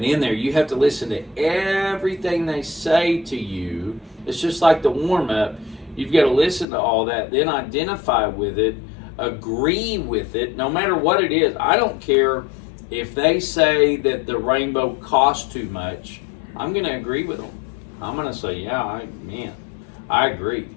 in there. You have to listen to everything they say to you. It's just like the warm-up. You've got to listen to all that, then identify with it, agree with it, no matter what it is. I don't care if they say that the rainbow costs too much. I'm going to agree with them. I'm going to say, yeah, I agree.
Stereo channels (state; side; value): drops out; right; at 6.7 s